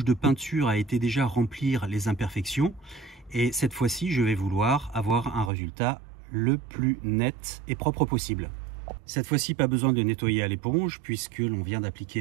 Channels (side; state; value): left; drops out; at 5.5 s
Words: de peinture a été déjà remplir les imperfections. Et cette fois-ci, je vais vouloir avoir un résultat le plus net et propre possible. Cette fois-ci, pas besoin de nettoyer à l'éponge puisque l'on vient